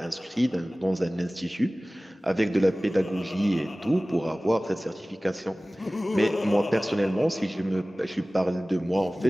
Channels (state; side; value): normal; both; correlation 0.98